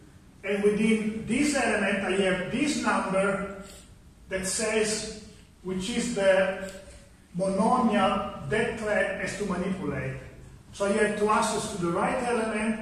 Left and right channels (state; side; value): identical; both; correlation 1.00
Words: And within this element, I have this number that says which is the monomial that thread has to manipulate. So I have to access to the right